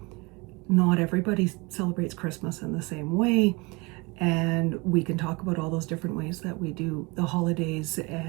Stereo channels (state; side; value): quieter; left; 26.0 dB